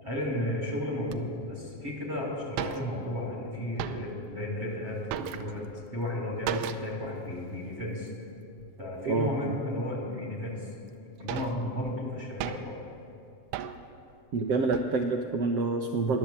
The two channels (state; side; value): late; left; 7.5 ms